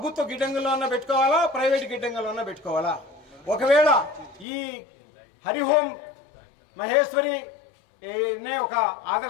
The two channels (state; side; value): drops out; right; at 4.5 s